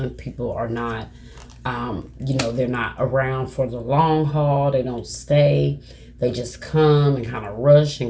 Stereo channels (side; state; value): both; identical; correlation 1.00